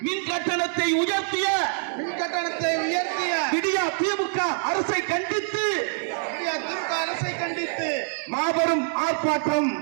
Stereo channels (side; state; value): left; silent; digital silence